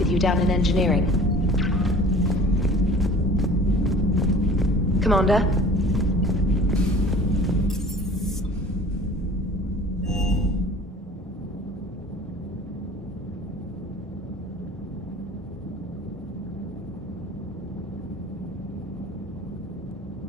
you down in engineering. Commander?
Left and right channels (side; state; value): both; normal; correlation 0.45